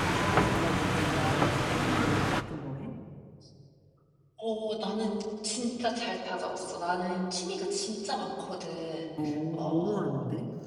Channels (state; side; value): identical; both; correlation 1.00